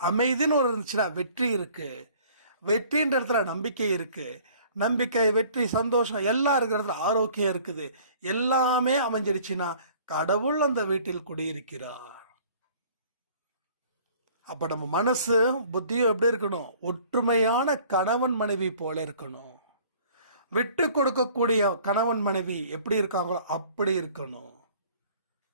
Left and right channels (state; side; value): inverted; both; correlation -0.53